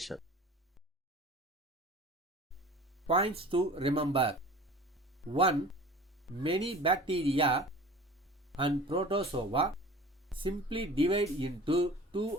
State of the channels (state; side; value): normal; both; correlation 0.41